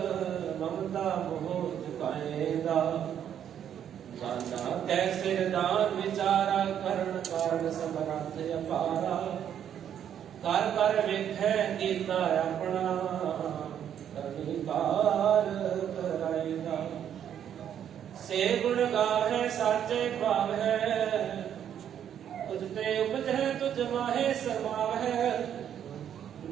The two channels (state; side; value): quieter; left; 9.4 dB